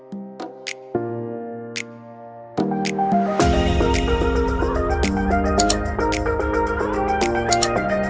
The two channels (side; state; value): both; identical; correlation 1.00